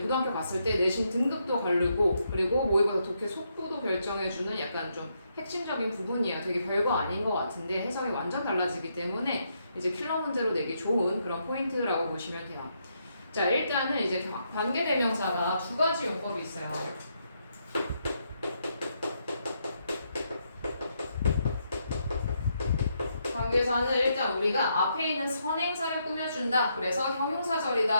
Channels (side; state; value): both; inverted; correlation -0.78